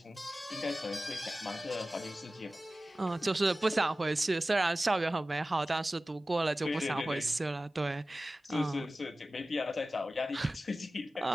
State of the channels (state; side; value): normal; both; correlation 0.96